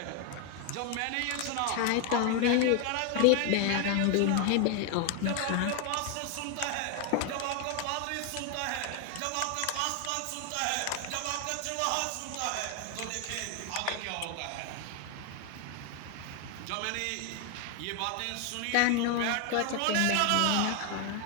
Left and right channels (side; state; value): both; different; correlation 0.01